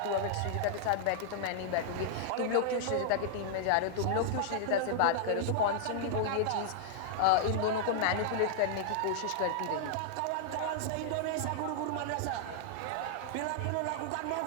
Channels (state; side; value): different; both; correlation -0.01